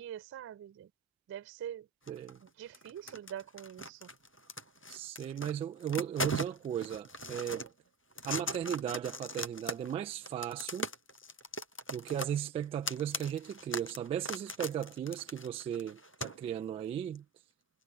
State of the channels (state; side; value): quieter; left; 5.8 dB